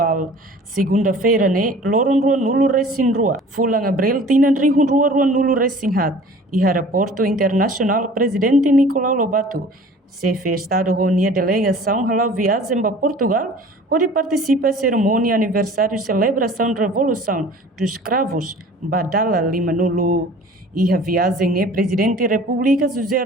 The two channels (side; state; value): both; normal; correlation 0.46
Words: Segunda-feira, loron rua nulo resin rua. Fulang Abril tinan rihun rua nulo resin hat. E aeroporto internacional Presidente Nicolau Lobato. Chefe Estado reuniu a delegação halau viagem para Portugal, onde participa da cerimônia aniversário celebração da Revolução dos Escravos, Badala Lima Nulo. E a viagem Presidente da República José